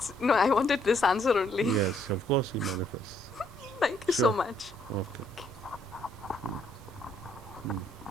no, I wanted this answer only. Yes, of course he manifests. Thank you so much. Okay.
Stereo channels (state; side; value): normal; both; correlation 0.69